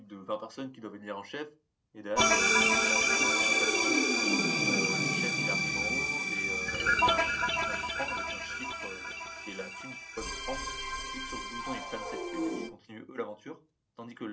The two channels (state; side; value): identical; both; correlation 1.00